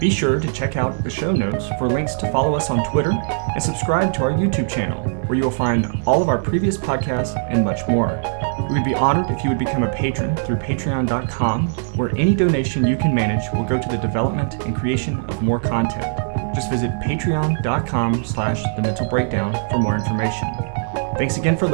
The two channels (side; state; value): left; silent; digital silence